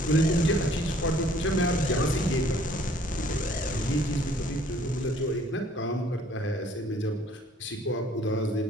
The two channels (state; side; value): normal; both; correlation 0.58